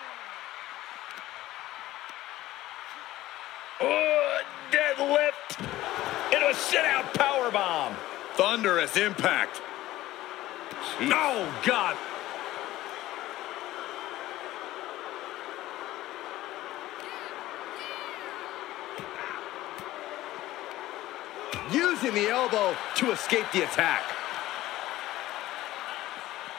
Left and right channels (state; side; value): quieter; right; 15.9 dB